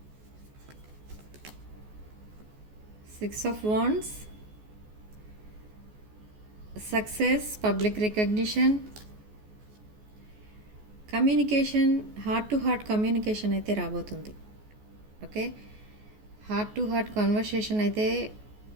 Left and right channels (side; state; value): left; late; 14 ms